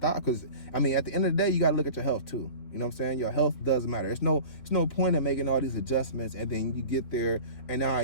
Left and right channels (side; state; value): right; late; 3.8 ms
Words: Because, at the end of the day, you got to look at your health, too. You know what I'm saying? Your health does matter. There's no point in making all these adjustments and then you get there and now